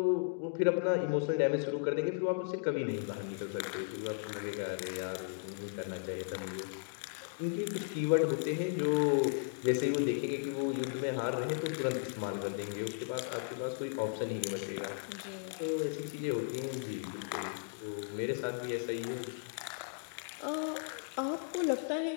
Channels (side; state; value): right; silent; digital silence